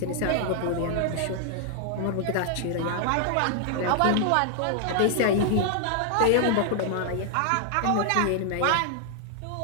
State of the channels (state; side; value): different; both; correlation 0.00